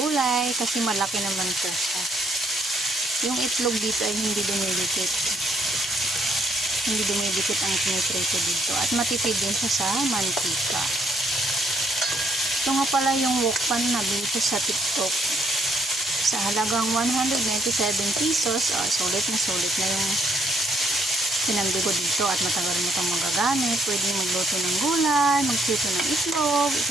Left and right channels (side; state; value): both; normal; correlation 0.70